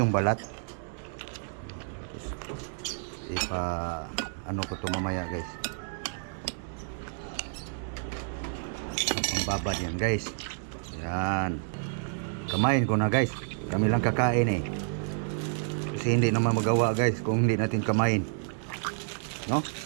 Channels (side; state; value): left; silent; digital silence